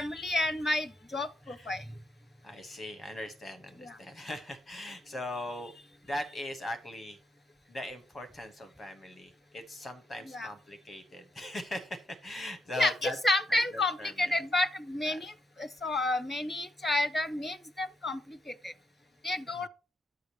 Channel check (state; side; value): normal; both; correlation 0.81